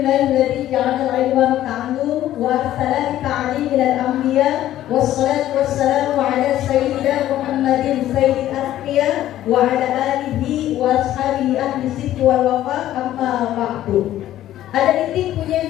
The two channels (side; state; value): right; quieter; 13.1 dB